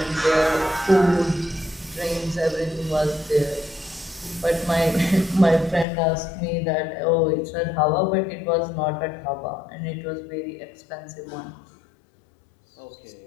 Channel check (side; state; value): right; drops out; at 5.9 s